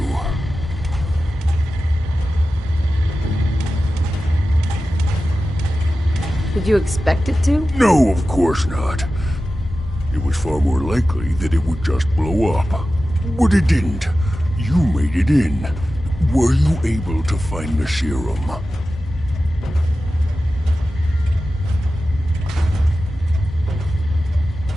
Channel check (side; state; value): both; normal; correlation 0.94